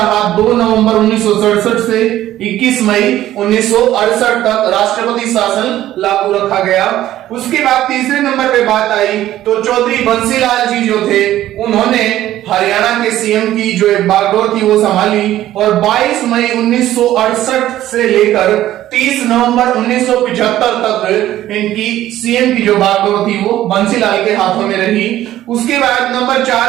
2 नवंबर 1967 से 21 मई 1968 तक राष्ट्रपति शासन लागू रखा गया। उसके बाद तीसरे नंबर पे बात आई तो चौधरी बंसीलाल जी जो थे उन्होंने हरियाणा के सीएम की जो एक बागडोर थी वो संभाली और 22 मई 1968 से लेकर 30 नवंबर 1975 तक इनकी सीएम की जो बागडोर थी वो बंसीलाल के हाथों में रही। उसके बाद नंबर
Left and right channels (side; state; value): left; quieter; 13.6 dB